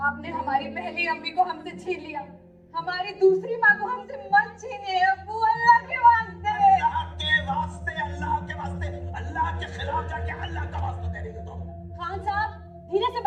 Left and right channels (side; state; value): both; identical; correlation 1.00